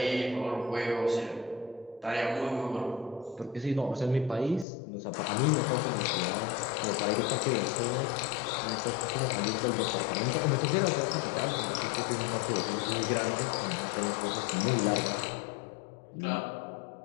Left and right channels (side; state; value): right; drops out; at 4.7 s